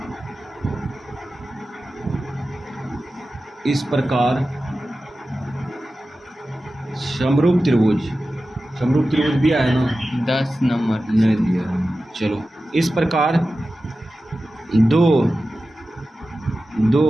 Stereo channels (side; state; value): both; normal; correlation 0.94